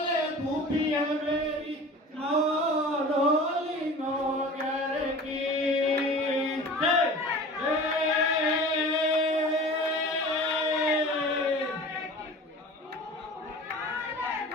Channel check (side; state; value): both; normal; correlation 0.39